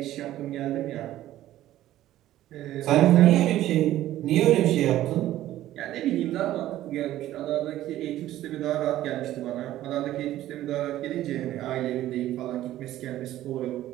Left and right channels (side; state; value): left; quieter; 13.9 dB